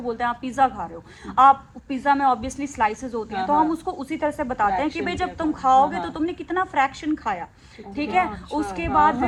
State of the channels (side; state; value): both; identical; correlation 1.00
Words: बोलते हैं आप पिज्ज़ा खा रहे हो, आप पिज्ज़ा में ऑब्वियसली स्लाइसेस होती हैं, तो हम उसको उसी तरह से बताते हैं कि भाई जब तुम खाओगे तो तुमने कितना फ्रैक्शन खाया, ठीक है। उसके बाद